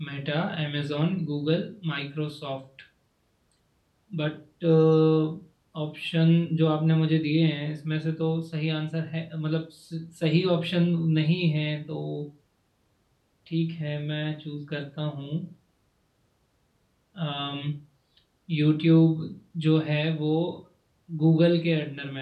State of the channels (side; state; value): both; identical; correlation 1.00